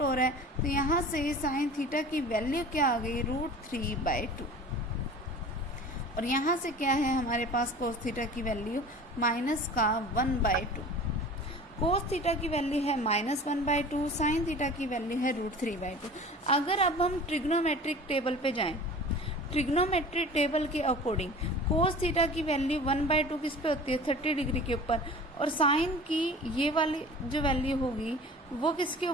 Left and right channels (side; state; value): both; normal; correlation 0.40